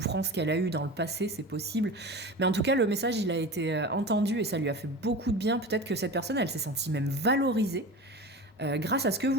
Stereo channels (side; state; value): both; normal; correlation 0.31